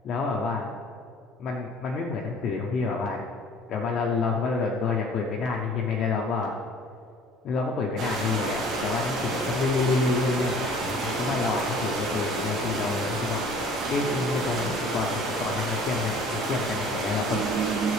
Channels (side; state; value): both; normal; correlation 0.50